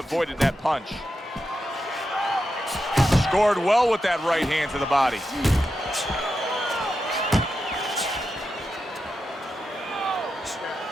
that punch. Scored well with that right hand to the body.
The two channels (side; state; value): both; normal; correlation 0.88